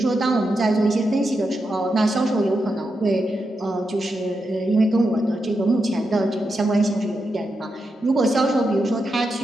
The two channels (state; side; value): normal; both; correlation 0.86